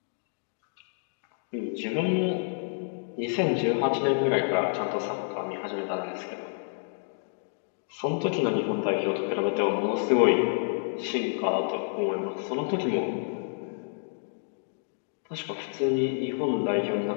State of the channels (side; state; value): right; silent; digital silence